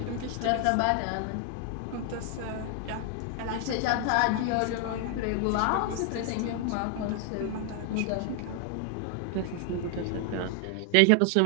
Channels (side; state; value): both; different; correlation 0.00